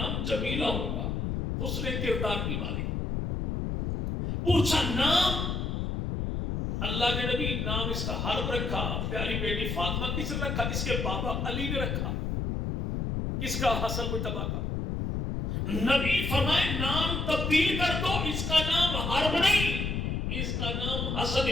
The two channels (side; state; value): left; noise; rumble, 1 dB below the sound